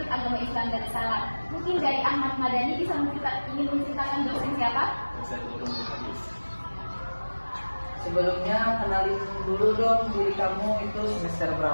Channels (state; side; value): inverted; both; correlation -1.00